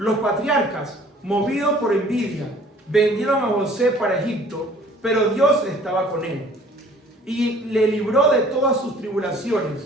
patriarcas, movidos por envidia, vendieron a José para Egipto, pero Dios estaba con él y le libró de todas sus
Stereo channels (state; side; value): normal; both; correlation 0.53